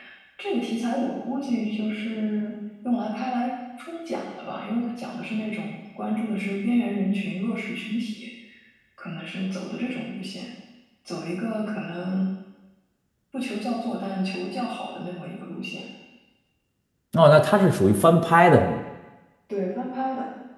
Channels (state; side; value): identical; both; correlation 1.00